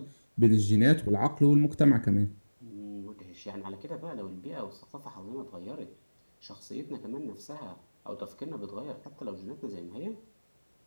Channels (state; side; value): inverted; both; correlation -1.00